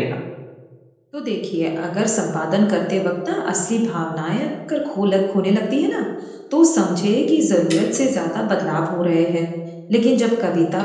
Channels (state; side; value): identical; both; correlation 1.00